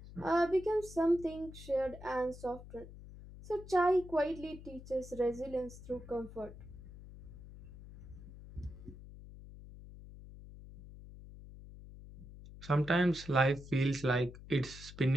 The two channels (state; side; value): noise; left; hum, 16 dB below the sound